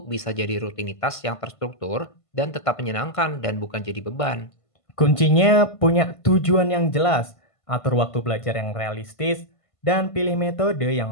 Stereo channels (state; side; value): late; right; 1.5 ms